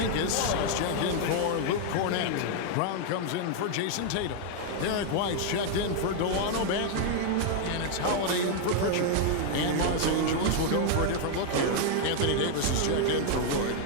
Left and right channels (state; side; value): different; both; correlation 0.00